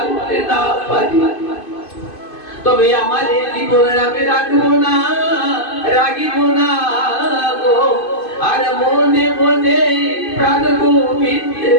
না পারি তবে আমার এই জীবন আমি রাখবো না রাখিব না গো আর মনে মনে প্রাণ গোবিন্দে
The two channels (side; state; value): right; late; 2.5 ms